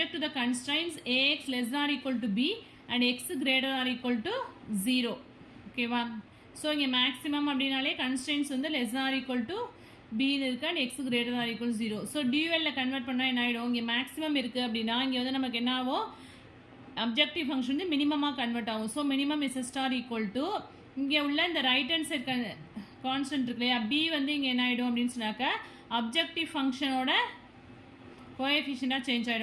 to the constraints AX less than or equal to B and X greater than or equal to 0. ஓகேவா? ஸோ இங்கே maximum அப்படின்னாலே constants வந்து less or equal to பின்னு இருக்கு and x greater or equal 0. So டியூஎல்ல convert பண்ணால் என்ன ஆகிடும், இங்கே மேக்ஸிமம் இருக்குது அப்படின்னா இங்கே வந்து நமக்கு என்ன ஆகும், அப்ஜெக்டிவ் ஃபங்க்ஷன் வந்து மினிமமாக கன்வெர்ட் ஆகும். So minimum is star equal to இங்கே உள்ள இந்த ரைட் ஹேண்ட் சைட் கான்ஸ்டன்ட் இருக்கு இல்லையா, பி வந்து இங்கே என்ன ஆகிடும் அப்படின்னு சொன்னாக்கா அப்ஜெக்டிவ் ஃபங்க்ஷனோட கோஎஃபிஷியண்டாக சேஞ்ச்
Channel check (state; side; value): identical; both; correlation 1.00